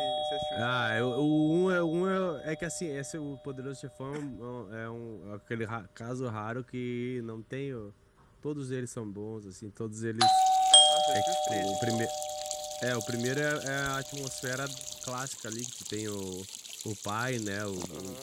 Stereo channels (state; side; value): identical; both; correlation 1.00